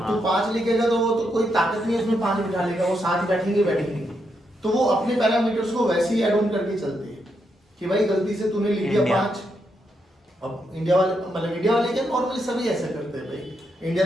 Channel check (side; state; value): both; normal; correlation 0.81